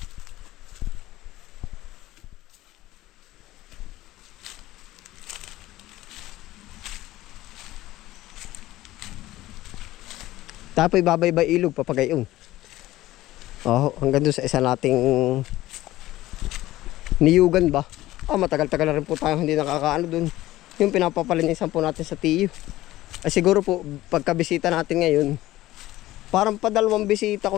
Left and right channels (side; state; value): right; quieter; 16.2 dB